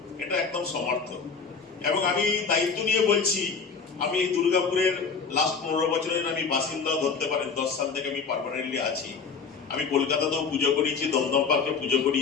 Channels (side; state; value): right; quieter; 5.4 dB